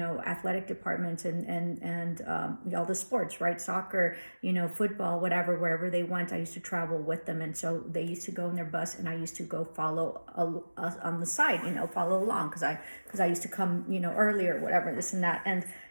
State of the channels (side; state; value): both; inverted; correlation -1.00